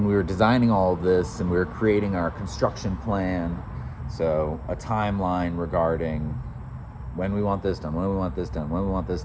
we were designing all of this and we were creating our construction plan, so a timeline regarding when we want this done, when we want this done, when we want this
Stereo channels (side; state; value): both; identical; correlation 1.00